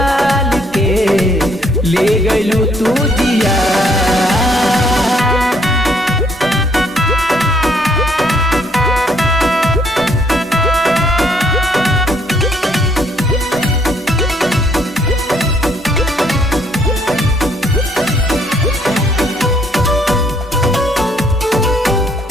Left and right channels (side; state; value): both; normal; correlation 0.67